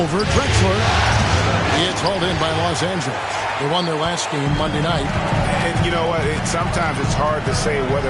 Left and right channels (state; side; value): identical; both; correlation 1.00